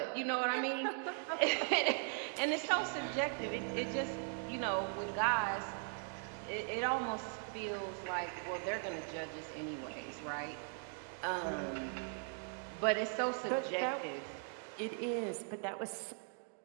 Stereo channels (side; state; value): left; silent; 51 dB below the other